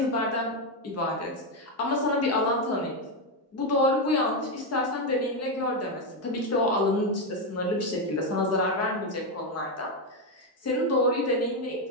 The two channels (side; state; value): both; normal; correlation 0.07